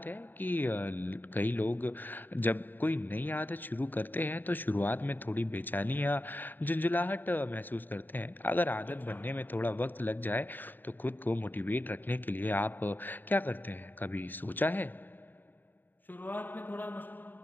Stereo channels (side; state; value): right; late; 0.091 ms